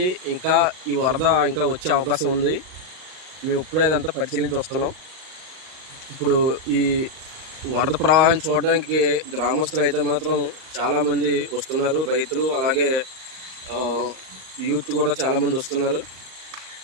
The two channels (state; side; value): late; left; 38 ms